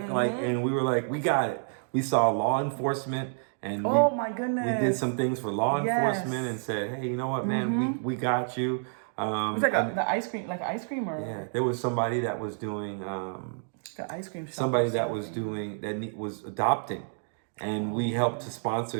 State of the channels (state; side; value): silent; left; digital silence